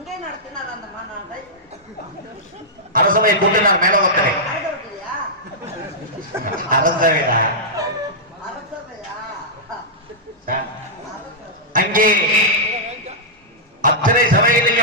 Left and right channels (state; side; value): normal; both; correlation -0.12